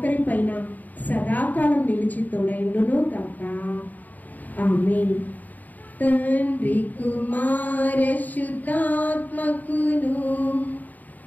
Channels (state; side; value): late; right; 0.081 ms